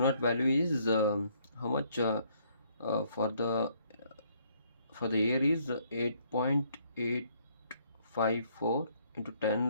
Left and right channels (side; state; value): both; inverted; correlation -0.67